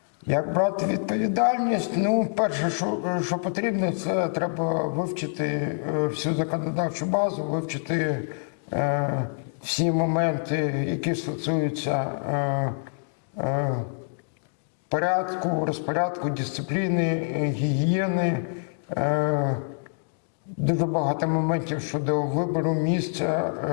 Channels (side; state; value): right; silent; digital silence